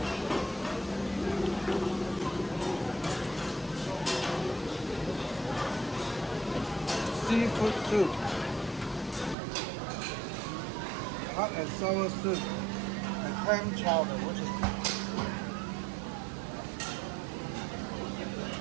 Seafood soup. Hot and sour soup. And clam chowder, which is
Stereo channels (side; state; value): left; drops out; at 9.3 s